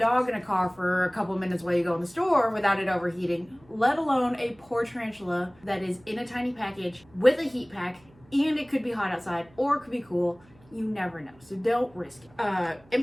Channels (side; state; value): right; noise; hum, 28 dB below the sound